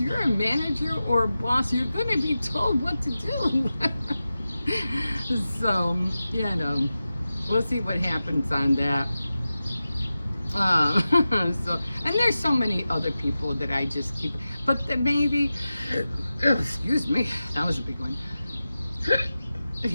you're a manager or a boss, you're going to be told what to do. So, we'll see what happens on that. And there's so many other people that I just keep, but that maybe, excuse me, that was a big one.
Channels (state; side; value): inverted; both; correlation -0.94